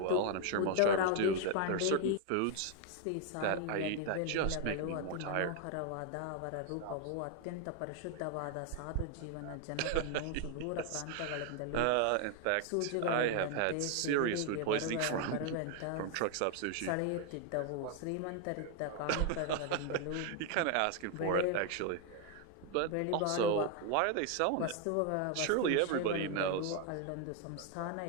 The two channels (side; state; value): both; different; correlation 0.00